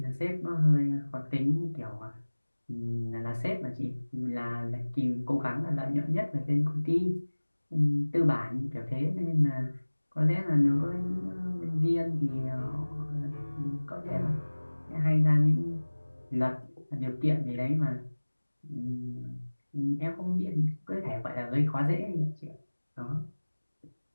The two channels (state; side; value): inverted; both; correlation -1.00